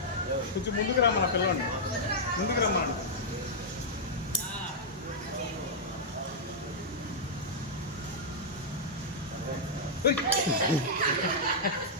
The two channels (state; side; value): normal; both; correlation -0.08